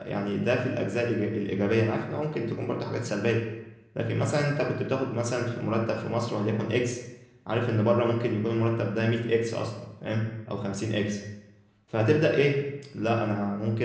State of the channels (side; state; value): both; identical; correlation 1.00